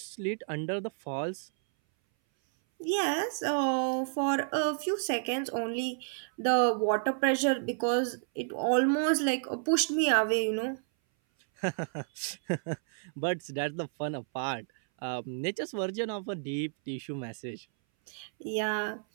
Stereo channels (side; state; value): left; silent; 57 dB below the other